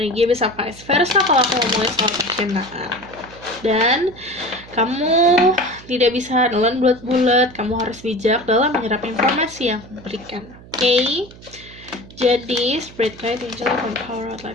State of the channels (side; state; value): right; noise; hum, 20 dB below the sound